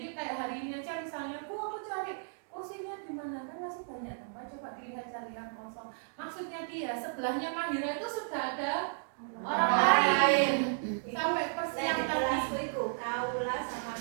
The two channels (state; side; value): silent; left; digital silence